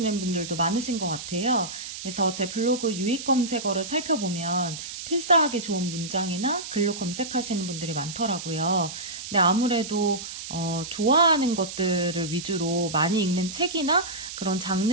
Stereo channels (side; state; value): right; noise; hiss, 9 dB below the sound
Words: 분들도 많으신 것 같아요. 그래서 제 블로그 유익 검색어를 살펴보면 필사하기 좋은 문장이나 글로 검색하시는 분들이 많더라고요. 근데 아무래도 좋아하는 것들을 위주로 많이 읽는 책이나 그런